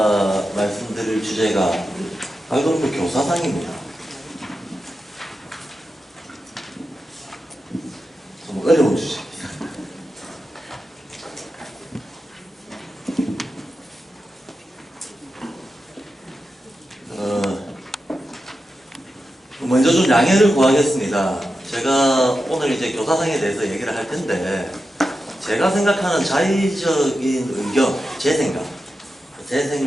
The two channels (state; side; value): normal; both; correlation 0.90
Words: 말씀드릴 주제가 발골프 교사상입니다. 좀 어려운 주제입니다. 먼저 좀 양해를 구하겠습니다. 제가 오늘 이제 교사상에 대해서 얘기를 할 텐데, 제가 생각하는 자의적인 의견, 제